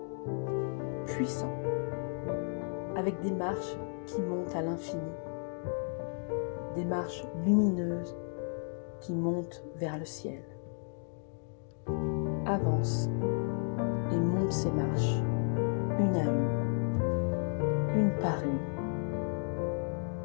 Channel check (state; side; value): silent; right; 56 dB below the other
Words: puissant, avec des marches qui montent à l'infini, des marches lumineuses qui montent vers le ciel. Avance et monte ces marches, une à une par une.